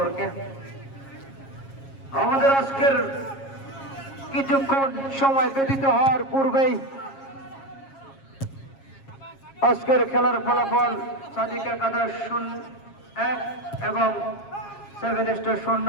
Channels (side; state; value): right; late; 7.4 ms